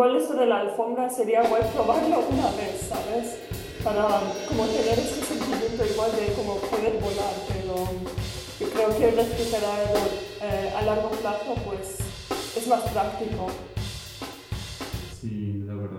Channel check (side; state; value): both; identical; correlation 1.00